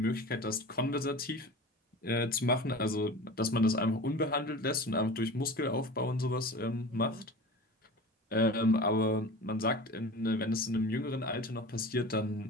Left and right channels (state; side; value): normal; both; correlation 0.35